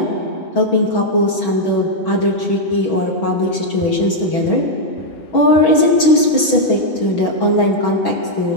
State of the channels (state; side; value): late; right; 6.3 ms